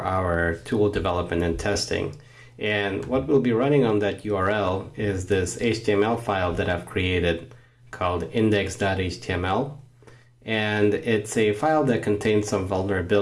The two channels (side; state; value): both; identical; correlation 1.00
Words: tool development and testing. And what we'll be running on that URL is this HTML file that I've created called index.html. And it's a file that contains some